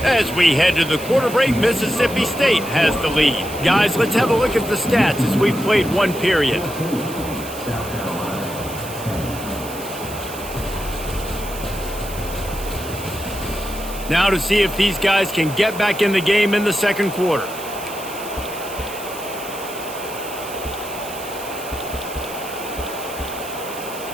As we head to the quarter break, Mississippi State has the lead. Guys, let's have a look at the stats as we've played one period. Now to see if these guys can get back in the game in the second quarter.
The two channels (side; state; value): right; noise; hiss, 13 dB below the sound